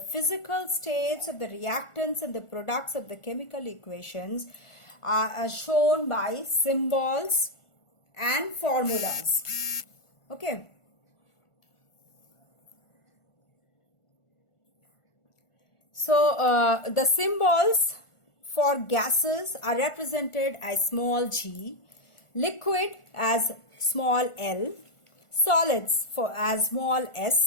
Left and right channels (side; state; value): right; late; 1.4 ms